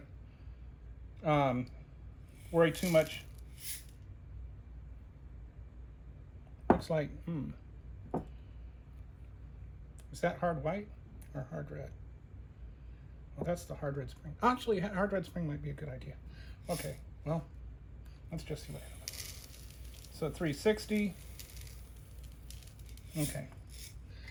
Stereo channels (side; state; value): both; identical; correlation 1.00